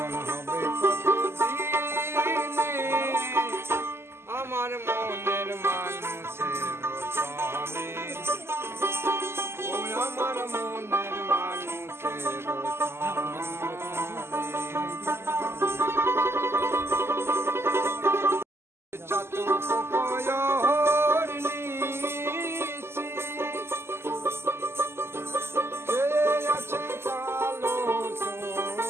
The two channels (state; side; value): late; left; 0.12 ms